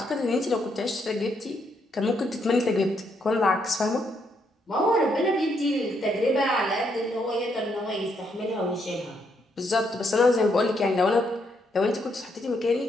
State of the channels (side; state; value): both; normal; correlation 0.76